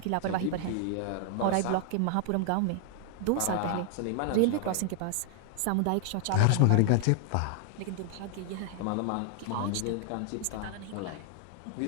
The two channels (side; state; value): both; different; correlation 0.00